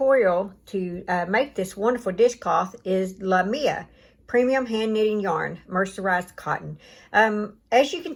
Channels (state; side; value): identical; both; correlation 1.00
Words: to make this wonderful dishcloth is Lamia Premium Hand Knitting Yarn, Mercerized Cotton. As you can